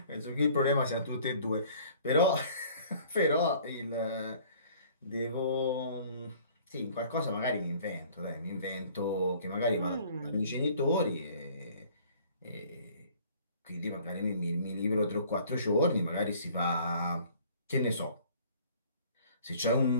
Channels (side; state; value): both; inverted; correlation -0.54